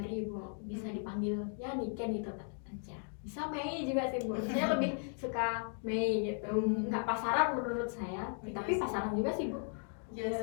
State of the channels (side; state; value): right; silent; 53 dB below the other